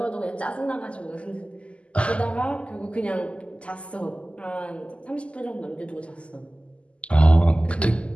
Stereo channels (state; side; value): late; right; 0.057 ms